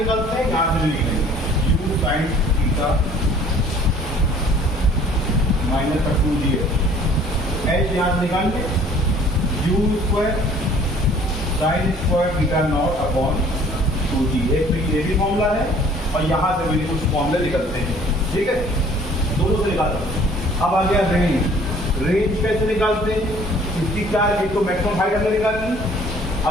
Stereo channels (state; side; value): normal; both; correlation 0.54